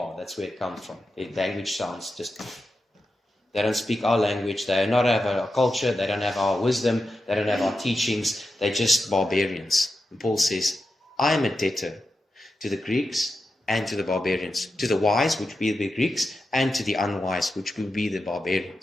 that's where it comes from. Their language sounds just... They don't speak our language. They do not have our culture. They don't have our wisdom. They don't have our teachings. They're just barbarians. And Paul says, I am a debtor to the Greeks and to the barbarians. To the wise, which will be the Greeks, and to the unwise, which will be the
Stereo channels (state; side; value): normal; both; correlation 0.89